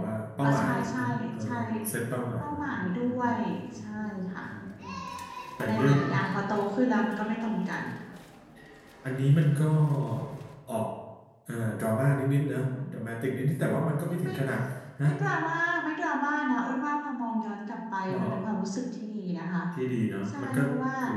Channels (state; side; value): identical; both; correlation 1.00